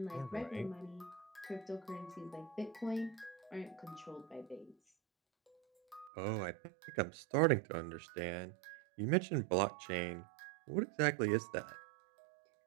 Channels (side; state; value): left; drops out; at 6.1 s